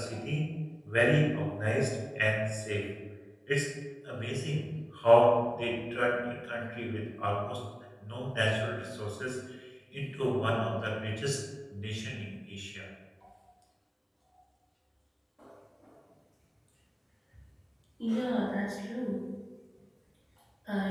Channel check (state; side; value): identical; both; correlation 1.00